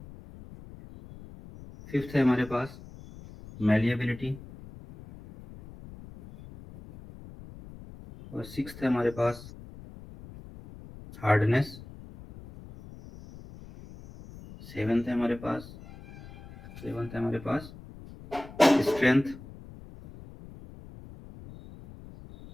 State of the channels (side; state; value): left; noise; rumble, 17 dB below the sound